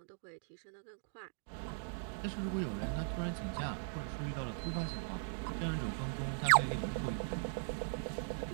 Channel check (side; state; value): left; silent; digital silence